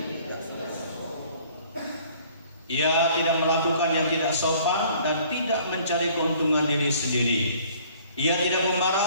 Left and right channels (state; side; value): inverted; both; correlation -0.55